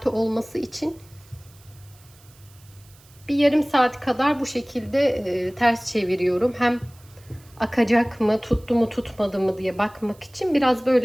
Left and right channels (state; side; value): noise; right; hiss, 27 dB below the sound